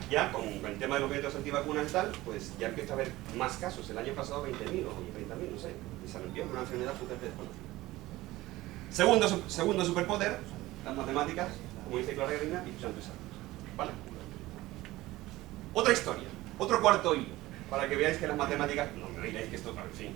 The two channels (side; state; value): left; quieter; 17.9 dB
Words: con el tema de los métodos antivacunas y tal, pues ya empieza a haber más casos. El año pasado 20.000 o 30.000, no sé, y sarampión, una enfermedad totalmente desconocida. Segundo superpoder, las matemáticas, como dice Clara Grima, y usando esas. ¿Vale? Otra historia, otro cuarto hilo, para que veáis que las matemáticas, no me digáis que esto, en fin,